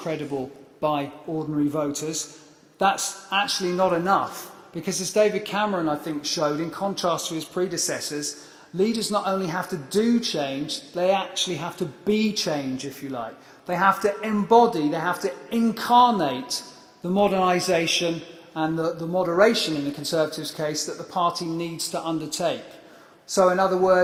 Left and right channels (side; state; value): both; identical; correlation 1.00